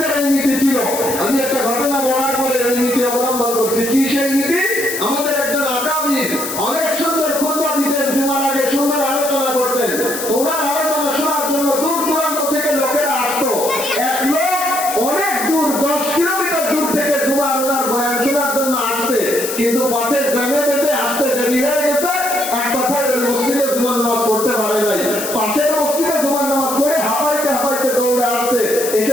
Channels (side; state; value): left; noise; hiss, 6 dB below the sound